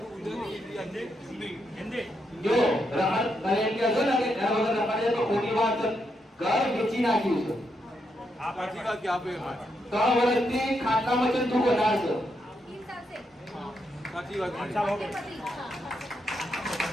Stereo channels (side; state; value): both; normal; correlation 0.81